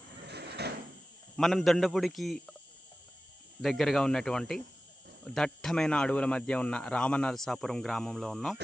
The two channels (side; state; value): both; normal; correlation 0.95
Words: మనం దొండపూడికి దగ్గరగా ఉన్నటువంటి దట్టమైన అడవుల మధ్య ఉన్న రామనరసాపురం గ్రామంలో ఉన్నాం.